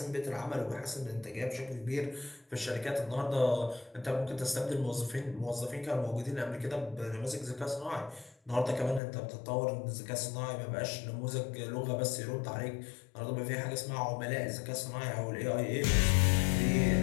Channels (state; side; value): drops out; right; at 9.0 s